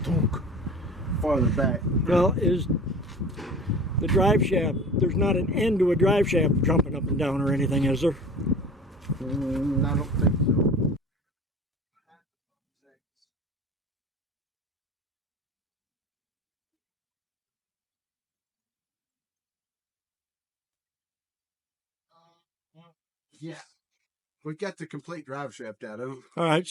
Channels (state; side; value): normal; both; correlation 0.41